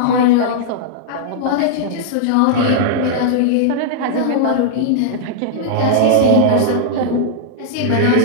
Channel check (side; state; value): both; different; correlation -0.02